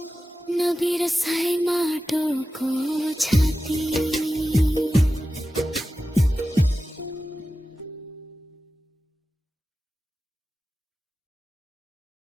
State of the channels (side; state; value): both; normal; correlation 0.94